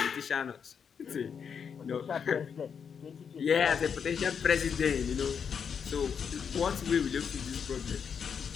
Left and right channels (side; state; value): right; quieter; 6.9 dB